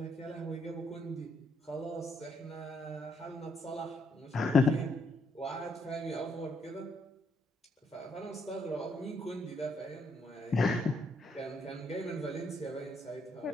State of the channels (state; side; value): normal; both; correlation 0.74